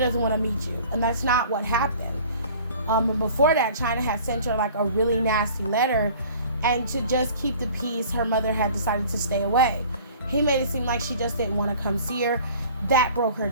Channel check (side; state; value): both; inverted; correlation -0.47